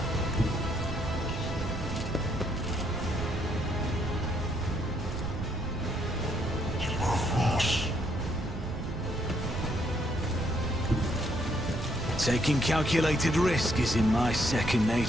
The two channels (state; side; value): noise; right; rumble, 6 dB below the sound